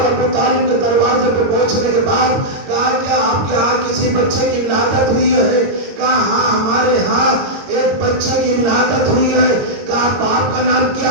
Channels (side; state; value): left; late; 22 ms